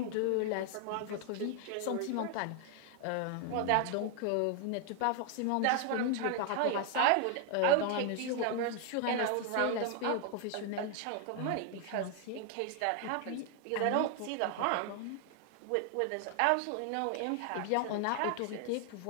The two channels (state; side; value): different; both; correlation 0.00